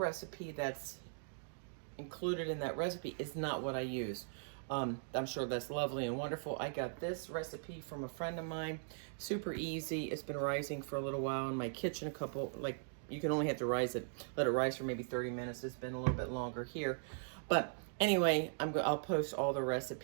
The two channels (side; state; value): left; silent; digital silence